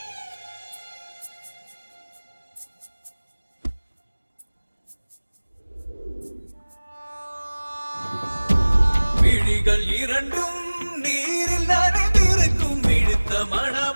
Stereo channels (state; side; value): inverted; both; correlation -1.00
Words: விழிகள் இரண்டும் நீரில் நனைந்திருக்கும் விழுத்த